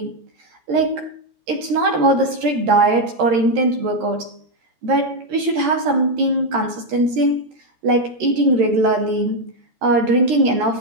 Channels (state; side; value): late; left; 13 ms